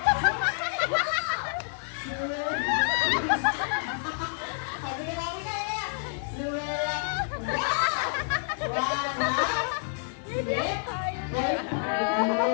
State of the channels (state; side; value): silent; right; 59 dB below the other